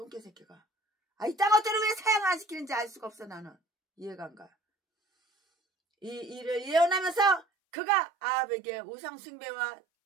새끼가 이딴 것들을 왜 사용 안 시키는지 알 수가 없어. 나는 이해가 안 가. 이 일을 예언하면서 그가 아합에게 우상 숭배와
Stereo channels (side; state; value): left; drops out; at 7.5 s